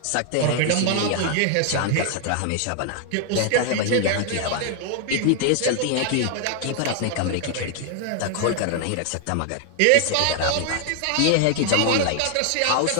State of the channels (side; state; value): both; different; correlation 0.00